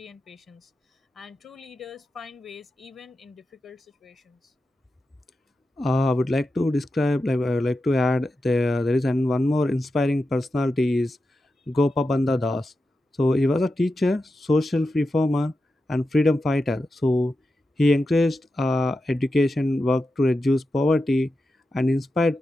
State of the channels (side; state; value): both; normal; correlation 0.90